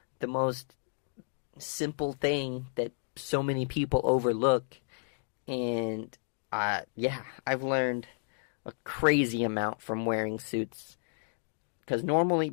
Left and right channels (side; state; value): right; silent; digital silence